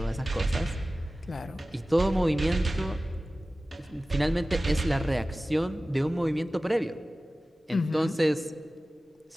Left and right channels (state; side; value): normal; both; correlation 0.96